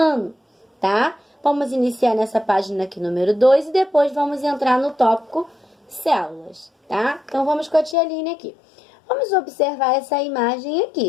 tá? Vamos iniciar nessa página aqui, número 2, e depois vamos entrar no tópico células, tá? Então, vamos com a tia Aline aqui. Vamos observar essa imagem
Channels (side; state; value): right; drops out; at 8.0 s